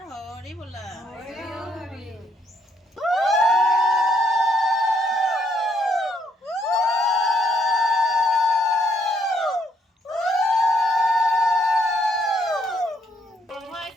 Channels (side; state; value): both; normal; correlation 0.71